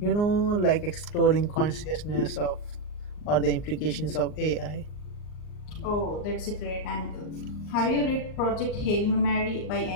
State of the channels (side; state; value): right; late; 39 ms